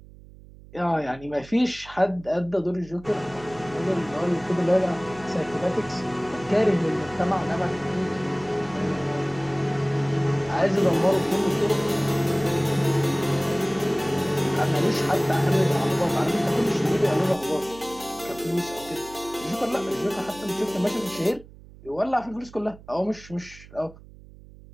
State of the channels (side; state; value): right; noise; hum, 20 dB below the sound